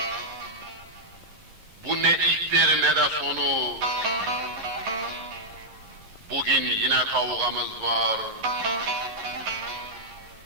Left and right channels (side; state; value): left; late; 11 ms